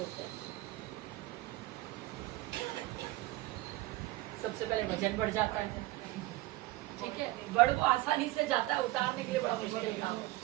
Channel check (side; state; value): left; quieter; 19.0 dB